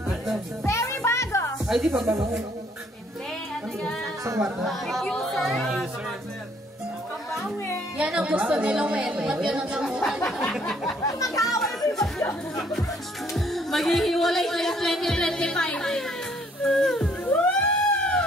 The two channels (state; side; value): normal; both; correlation 0.64